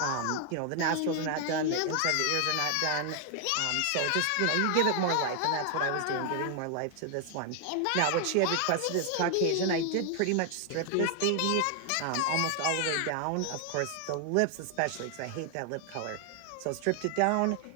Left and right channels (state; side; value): different; both; correlation 0.00